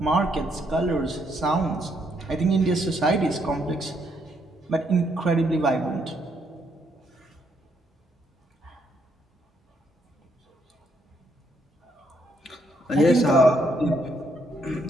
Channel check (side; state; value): both; normal; correlation 0.73